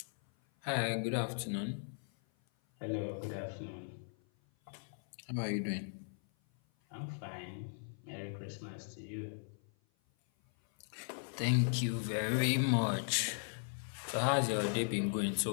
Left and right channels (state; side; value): silent; right; 53 dB below the other